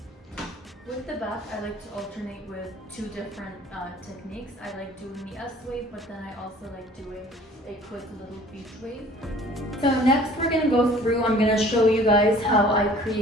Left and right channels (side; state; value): both; normal; correlation 0.50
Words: With the back, I like to alternate with 2 different techniques. I like doing the S wave, but then I also like doing a quick little beach wave. So next we're gonna go through, I'm gonna show you guys how I